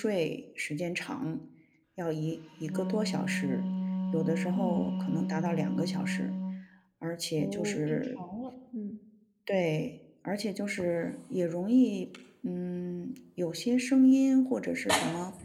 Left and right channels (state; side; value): identical; both; correlation 1.00